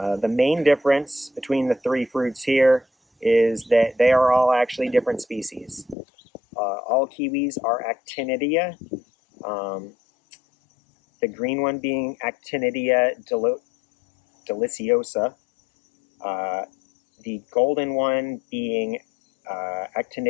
main difference between the three fruits here is that they are all actually different species. All kiwis are actinidia, the green one being Actinidia deliciosa, the golden one being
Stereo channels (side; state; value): right; drops out; at 6.0 s